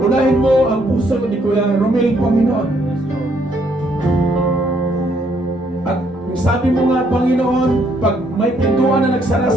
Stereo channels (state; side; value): normal; both; correlation 0.70